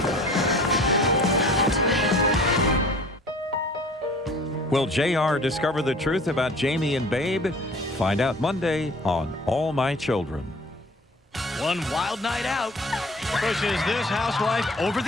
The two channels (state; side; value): normal; both; correlation 0.47